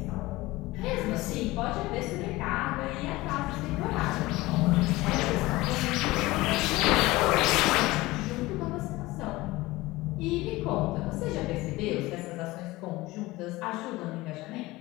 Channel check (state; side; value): quieter; right; 19.7 dB